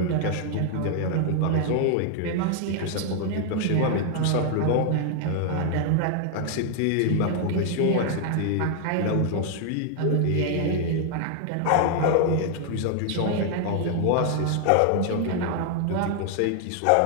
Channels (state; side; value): different; both; correlation 0.00